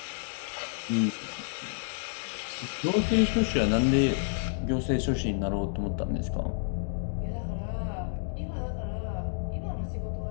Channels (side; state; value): right; silent; digital silence